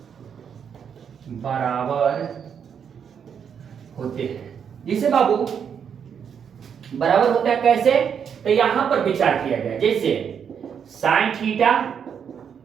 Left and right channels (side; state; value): left; quieter; 7.5 dB